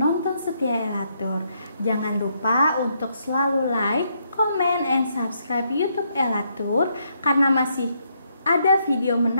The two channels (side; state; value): both; inverted; correlation -0.75